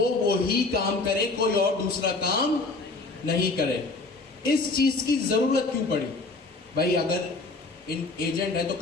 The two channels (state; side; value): quieter; right; 3.4 dB